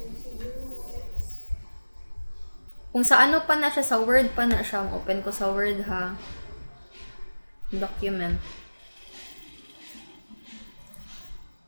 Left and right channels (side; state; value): both; inverted; correlation -1.00